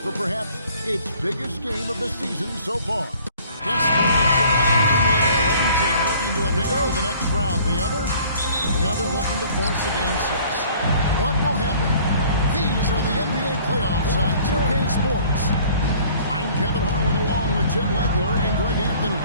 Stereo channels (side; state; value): both; inverted; correlation -0.53